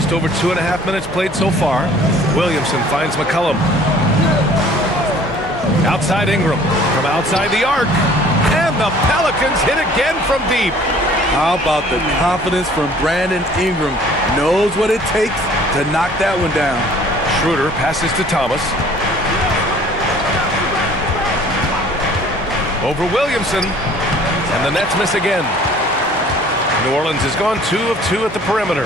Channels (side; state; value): right; noise; hum, 18 dB below the sound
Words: over 2.5 minutes played so far. Williamson finds McCollum. Outside Ingram. From outside the arc. And the Pelicans hit again from deep. How about the confidence from Brandon Ingram? Knows what it takes to knock that one down. Schroeder passes to Thomas. Over Williamson. And the Nets miss again. New Orleans has gone 2 of 2 at the perimeter.